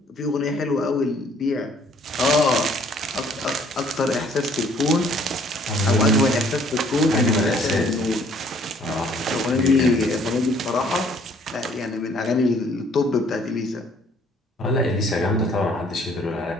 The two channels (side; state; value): both; normal; correlation 0.60